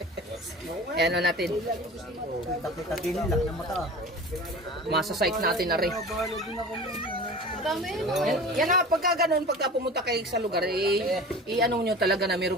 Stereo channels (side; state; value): both; normal; correlation 0.37